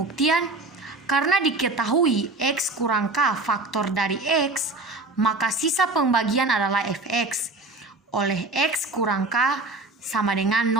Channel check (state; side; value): quieter; left; 3.3 dB